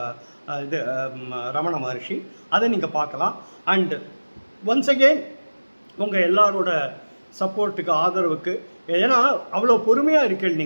இது ரமண மகரிஷி, அதை நீங்கள் பார்க்கலாம். அண்ட் ஒன்ஸ் அகெயின் உங்கள் எல்லாரோட சப்போர்ட்டுக்கு, ஆதரவுக்கு, ஏன்னா அவ்வளோ பொறுமையாக இருக்கீங்க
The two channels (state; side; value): inverted; both; correlation -1.00